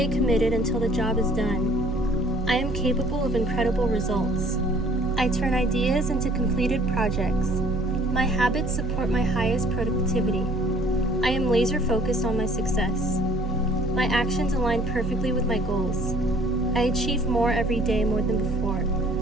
committed until the job is done. I am capable of incredible results. I turn ideas into completed projects. My habits support my highest productivity. I am laser focused on my success. My actions align perfectly with my goals. I achieve more every day more than before.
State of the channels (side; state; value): both; normal; correlation 0.56